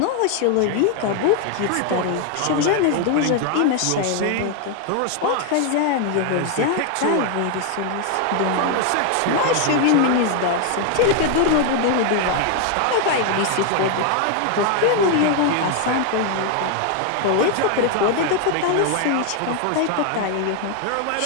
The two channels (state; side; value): different; both; correlation 0.00